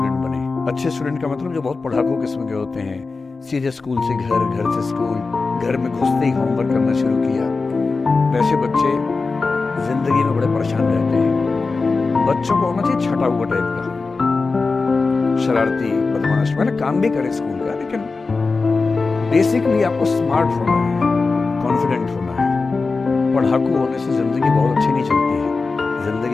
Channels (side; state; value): right; quieter; 4.1 dB